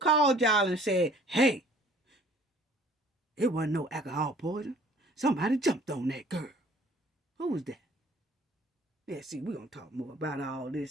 called y'all and said, hey, it wasn't no alcohol poison. Somebody jumped on that girl. Who was that? Yeah, see, we're going to talk more about all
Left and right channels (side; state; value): both; normal; correlation 0.55